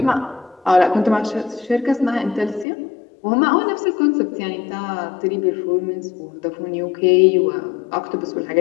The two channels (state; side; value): drops out; right; at 2.7 s